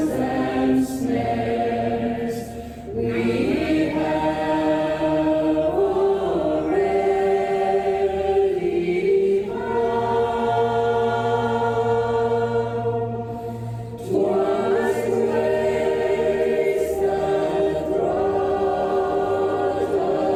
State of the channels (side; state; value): both; identical; correlation 1.00